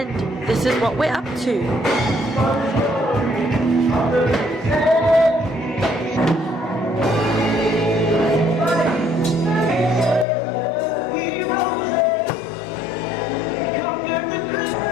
this is what we're up to.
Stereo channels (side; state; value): right; drops out; at 10.2 s